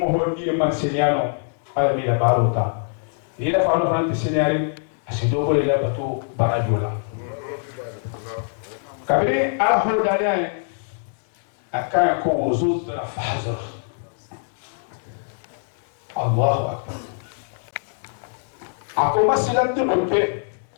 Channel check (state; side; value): silent; right; digital silence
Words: هو ني من سينيانو على ميلا باروتا إذا فانو فرانتي سينياري أسيدوكو للا بتو باراجولا kabiri ala hodani akaya ko wuzud na fahzar Allahu akbar ako masilan dunke